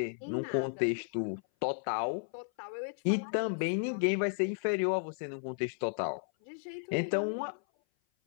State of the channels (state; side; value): silent; right; 55 dB below the other